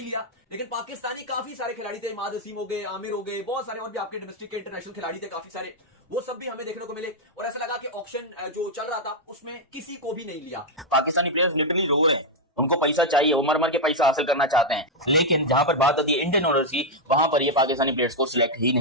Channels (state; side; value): normal; both; correlation -0.01